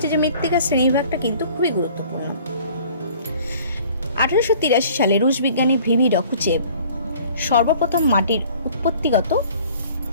যে মৃত্তিকা শ্রেণীবিভাগটা কিন্তু খুবই গুরুত্বপূর্ণ। 1883 সালে রুশ বিজ্ঞানী ভিভি ডকুচেভ সর্বপ্রথম মাটির উৎপত্তিগত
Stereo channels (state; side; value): inverted; both; correlation -0.51